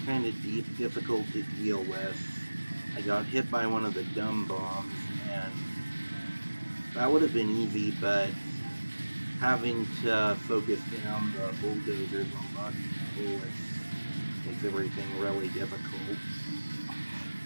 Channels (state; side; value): inverted; both; correlation -1.00